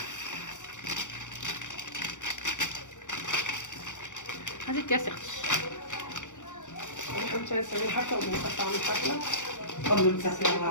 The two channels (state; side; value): late; right; 0.86 ms